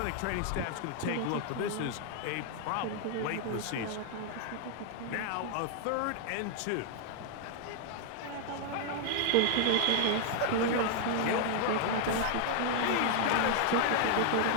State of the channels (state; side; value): different; both; correlation 0.00